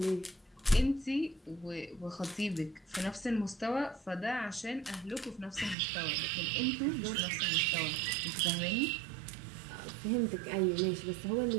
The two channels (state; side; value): drops out; left; at 5.8 s